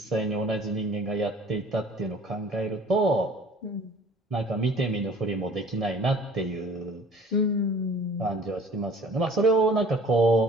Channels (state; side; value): normal; both; correlation 0.50